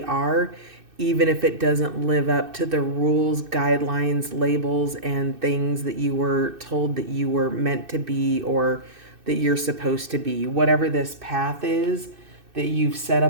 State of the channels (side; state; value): left; late; 2.6 ms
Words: are, even if it doesn't live up to the rules, guidelines, labels, and things that you were told that you were meant to be or that you're supposed to be. Whatever this path is that you've set